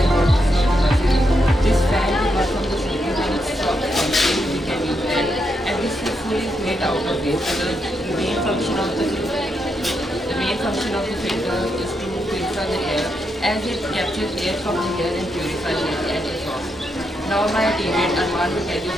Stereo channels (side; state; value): both; normal; correlation 0.81